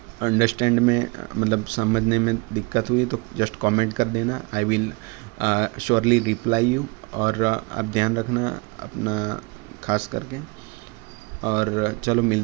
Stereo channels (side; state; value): left; quieter; 28.6 dB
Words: अंडरस्टैंड में मतलब समझने में दिक्कत हुई तो जस्ट कमेंट कर देना, I will surely reply you. और आप ध्यान रखना अपना खास करके। और चलो